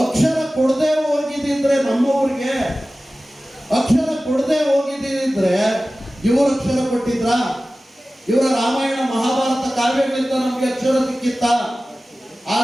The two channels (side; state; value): both; normal; correlation 0.96